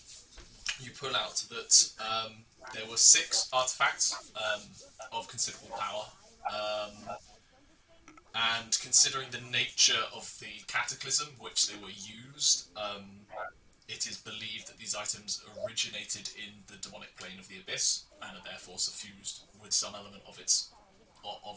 you pull out that there were 6 artifacts of considerable power, and considering the nature of the cataclysm which they were used, it is believed that these items originated in the demonic plane of the abyss and are therefore suffused with some element of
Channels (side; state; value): both; identical; correlation 1.00